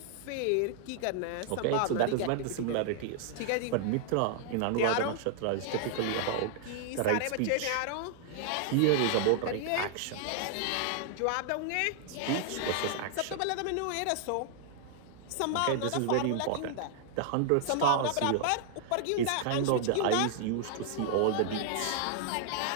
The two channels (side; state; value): both; different; correlation 0.00